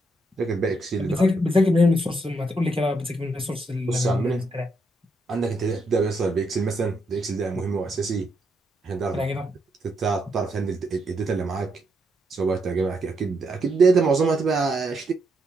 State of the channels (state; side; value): normal; both; correlation 0.78